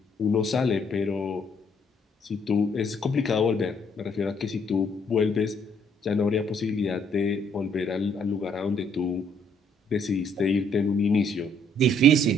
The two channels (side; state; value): both; normal; correlation 0.67